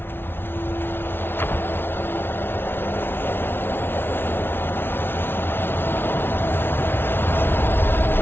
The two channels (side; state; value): right; late; 0.11 ms